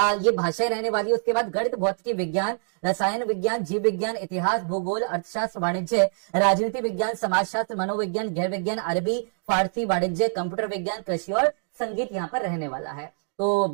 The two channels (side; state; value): left; silent; 61 dB below the other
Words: ये भाषाएं रहने वाली है। उसके बाद गणित, भौतिक विज्ञान, रसायन विज्ञान, जीव विज्ञान, इतिहास, भूगोल, अर्थशास्त्र, वाणिज्य, राजनीति विज्ञान, समाजशास्त्र, मनोविज्ञान, गैर विज्ञान, अरबी, फारसी, वाणिज्य, कंप्यूटर विज्ञान, कृषि और संगीत यहाँ पर रहने वाला है। तो